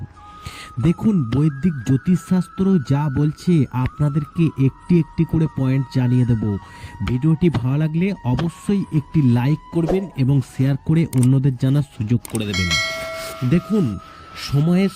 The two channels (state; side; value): identical; both; correlation 1.00